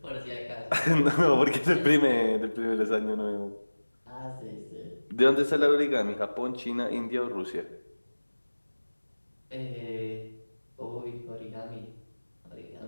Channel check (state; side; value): inverted; both; correlation -1.00